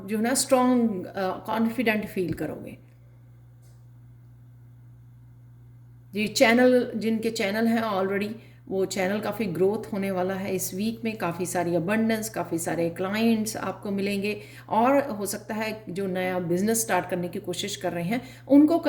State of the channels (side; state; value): both; identical; correlation 1.00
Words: जो है ना स्ट्रांग कॉन्फिडेंट फील करोगे। ये चैनल, जिनके चैनल हैं ऑलरेडी, वो चैनल काफ़ी ग्रोथ होने वाला है इस वीक में। काफ़ी सारी अबंडेंस, काफ़ी सारे क्लाइंट्स आपको मिलेंगे, और हो सकता है जो नया बिजनेस स्टार्ट करने की कोशिश कर रहे हैं उनको